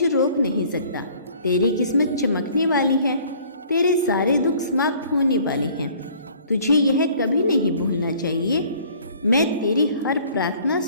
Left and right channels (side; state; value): both; inverted; correlation -0.54